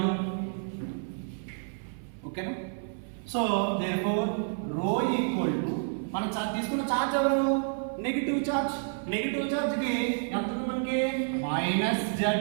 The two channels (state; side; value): silent; left; 58 dB below the other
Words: ఓకేనా. So therefore rho equal to మనం తీసుకున్న చార్జ్ ఎవరు, నెగిటివ్ చార్జ్. నెగిటివ్ చార్జ్ కి ఎంత ఉంది మనకి, మైనస్ Ze